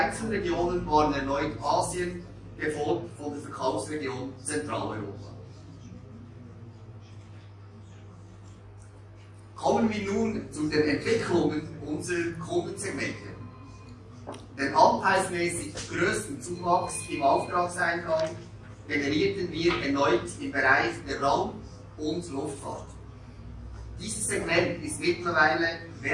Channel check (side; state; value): both; identical; correlation 1.00